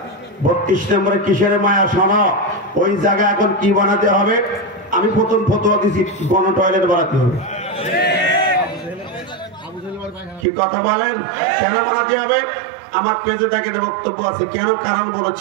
32 নম্বরে কিসের মায়া? শোনো, ওই জায়গা এখন কি বানাতে হবে? আমি প্রথম ফতোয়া দিছি, গণ টয়লেট বানাতে হবে। কি কথা বলেন? কেন বানাতে হবে? আমার পেজে দেখেন বক্তব্য আছে কেন, কারণ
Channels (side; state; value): left; drops out; at 10.5 s